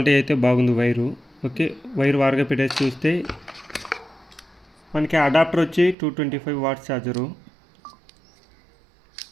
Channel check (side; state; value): left; drops out; at 6.0 s